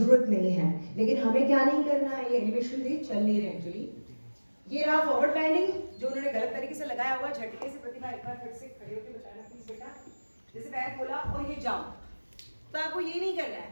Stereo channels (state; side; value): inverted; both; correlation -1.00